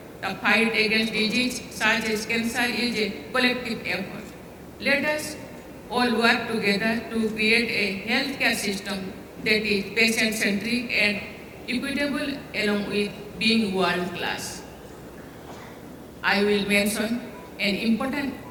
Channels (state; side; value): identical; both; correlation 1.00